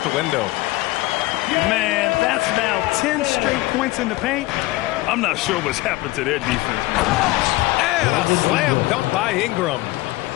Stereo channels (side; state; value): right; quieter; 19.5 dB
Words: the window. Man, that's now 10 straight points in the paint. I'm not sure what's happened to their defense. And a slam dunk by Ingram.